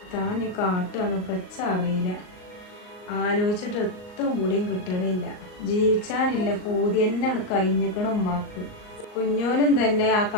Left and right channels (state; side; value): late; right; 39 ms